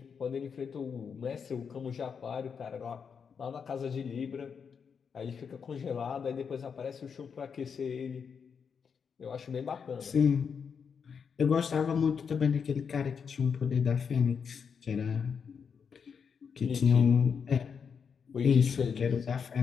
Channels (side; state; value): right; quieter; 6.4 dB